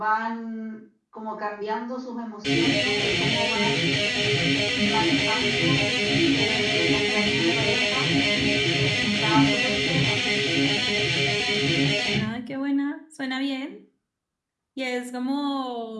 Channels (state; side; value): identical; both; correlation 1.00